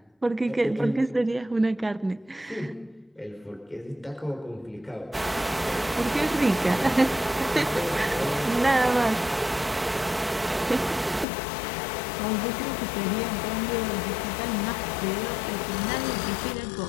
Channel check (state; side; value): drops out; right; at 11.2 s